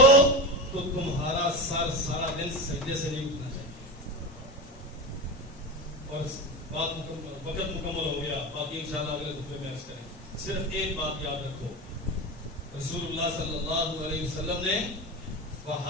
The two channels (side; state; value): both; normal; correlation 0.23